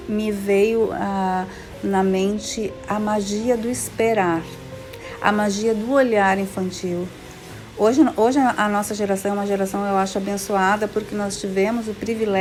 Me veio na mente a magia do esperar, a magia do olhar infantil. Hoje a nossa geração é uma geração, eu acho, abençoada, porque nós tivemos o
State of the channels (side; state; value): both; identical; correlation 1.00